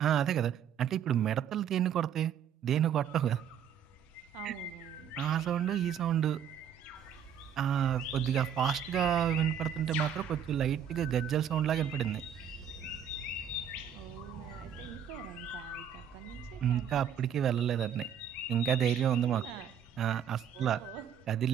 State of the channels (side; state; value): left; quieter; 8.4 dB